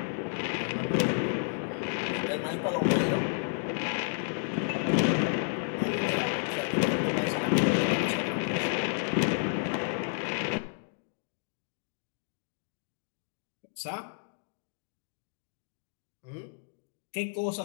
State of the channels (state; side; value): silent; right; digital silence